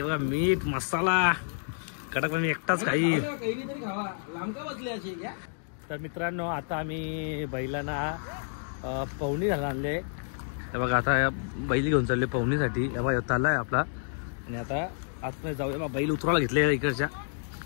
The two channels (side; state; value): right; silent; digital silence